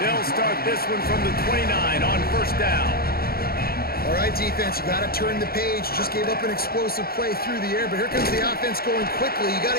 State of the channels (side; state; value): right; late; 0.44 ms